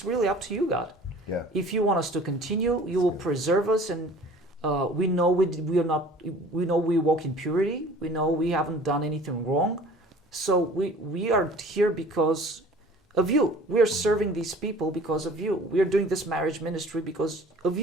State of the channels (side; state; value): both; normal; correlation 0.47